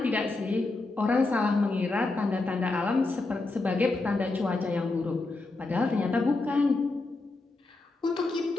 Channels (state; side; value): quieter; right; 3.3 dB